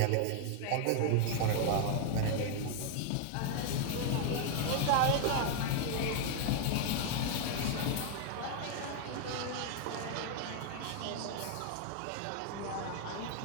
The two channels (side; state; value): both; different; correlation 0.00